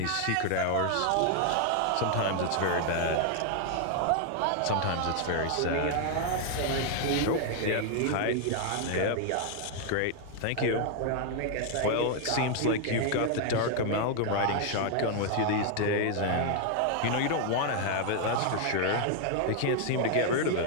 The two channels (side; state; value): both; different; correlation 0.00